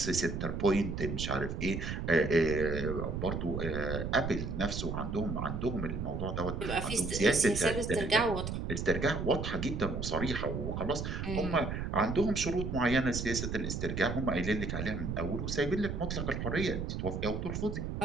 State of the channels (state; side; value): noise; right; rumble, 3 dB below the sound